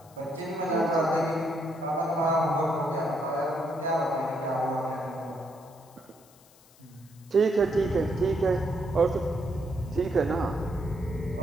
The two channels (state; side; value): noise; left; hiss, 27 dB below the sound